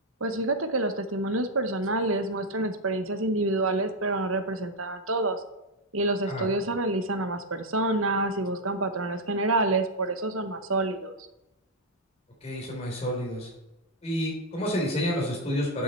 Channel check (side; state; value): both; normal; correlation 0.02